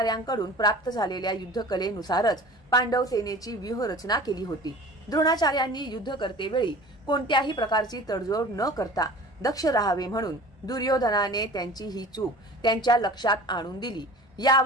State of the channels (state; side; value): normal; both; correlation 0.41